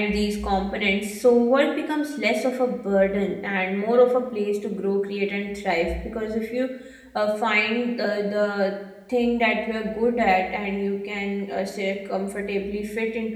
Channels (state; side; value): identical; both; correlation 1.00